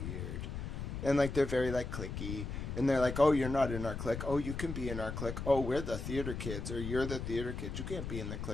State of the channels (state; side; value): noise; left; rumble, 5 dB below the sound